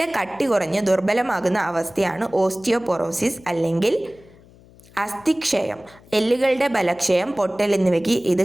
കട്ടി കുറഞ്ഞ് ദുർബലമാകുന്ന അവസ്ഥയാണ് ഓസ്റ്റിയോപൊറോസിസ് അല്ലെങ്കിൽ അസ്ഥിക്ഷയം. എല്ലുകളുടെ ബലക്ഷയം, പൊട്ടൽ എന്നിവയ്ക്ക് ഇത്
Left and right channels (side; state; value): left; noise; hum, 25 dB below the sound